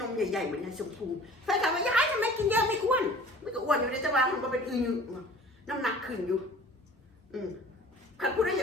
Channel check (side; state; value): both; normal; correlation 0.46